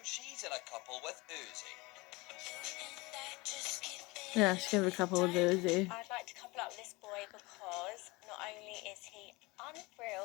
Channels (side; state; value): right; quieter; 24.1 dB